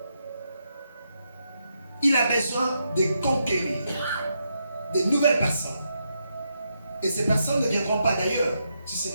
il a besoin de conquérir de nouvelles personnes, et ces personnes ne viendront pas d'ailleurs, si ce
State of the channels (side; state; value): both; inverted; correlation -0.82